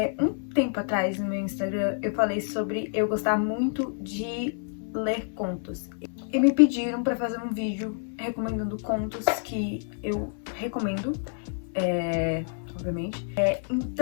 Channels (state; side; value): silent; right; 57 dB below the other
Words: Um tempo atrás no meu Instagram eu falei sobre eu gostar muito de ler contos. E me pediram pra fazer um vídeo recomendando contos que eu recomendo, obviamente.